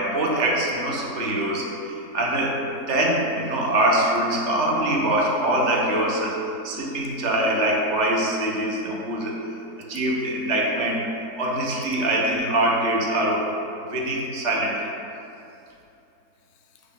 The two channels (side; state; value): right; late; 3.4 ms